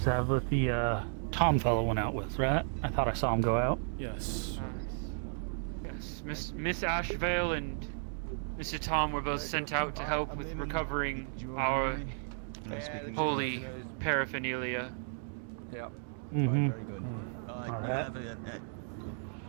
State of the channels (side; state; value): left; silent; digital silence